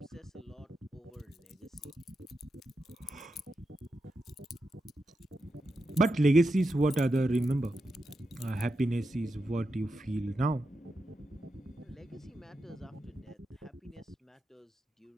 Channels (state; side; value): normal; both; correlation 0.88